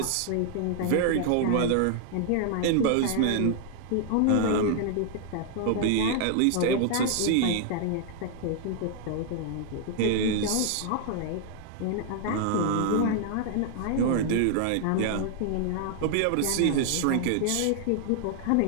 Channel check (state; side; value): different; both; correlation 0.00